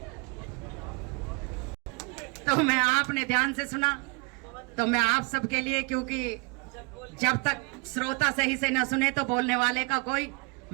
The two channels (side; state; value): left; quieter; 31.4 dB